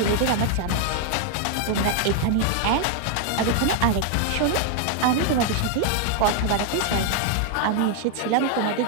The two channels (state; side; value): different; both; correlation 0.00